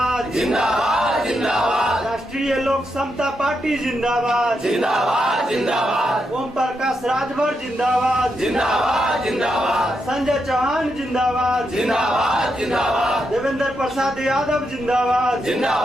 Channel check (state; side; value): normal; both; correlation 0.83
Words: जिंदाबाद जिंदाबाद। राष्ट्रीय लोक समता पार्टी जिंदाबाद जिंदाबाद जिंदाबाद। ओम प्रकाश राजभर जिंदाबाद जिंदाबाद जिंदाबाद। संजय चौहान जिंदाबाद जिंदाबाद जिंदाबाद। देवेंद्र प्रसाद यादव जिंदाबाद